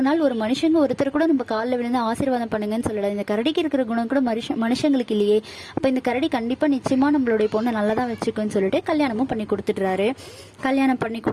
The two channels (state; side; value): identical; both; correlation 1.00